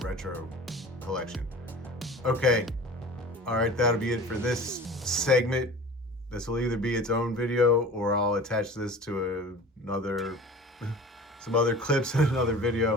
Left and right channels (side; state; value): both; normal; correlation 0.39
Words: Retro collection. Okay, all right, that'll be it for this segment. This will either be its own video, or I'll attach this to some other clips in another